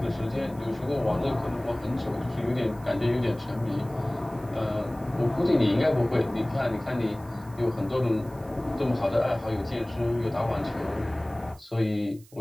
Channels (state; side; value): noise; right; hiss, 26 dB below the sound